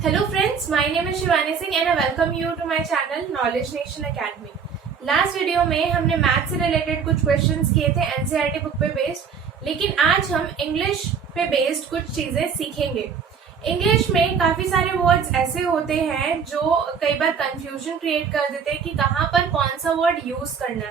Hello friends, my name is Shivani Singh and I welcome you to my channel Knowledge Nation Academy. Last video में हमने math से related कुछ questions किए थे NCERT book पे based, लेकिन आज हम इंग्लिश पे बेस्ड कुछ चीजें सीखेंगे। इंग्लिश में काफी सारे वर्ड्स ऐसे होते हैं जो कई बार कंफ्यूजन क्रिएट कर देते हैं कि कहाँ पर कौन सा वर्ड यूज करना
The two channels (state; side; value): quieter; left; 6.4 dB